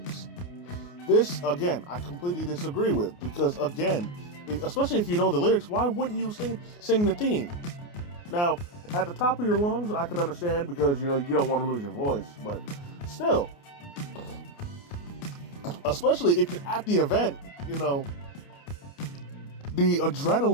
This, again, I completely disagree with, because, again, especially if you know the lyrics, why wouldn't you sing the theme? Now, at the top of your lungs, I can understand, because, you don't want to lose your voice, but still, especially if you're at the event, the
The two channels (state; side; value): late; right; 29 ms